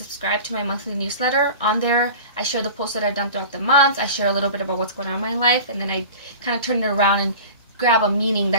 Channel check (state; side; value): inverted; both; correlation -0.37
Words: to my monthly newsletter. On there, I share the posts that I've done throughout the month. I share a little bit about what's going on in my life, and then I kind of turn it around and grab a meaning